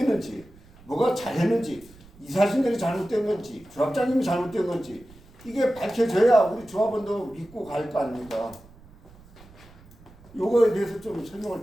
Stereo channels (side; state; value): right; noise; rumble, 24 dB below the sound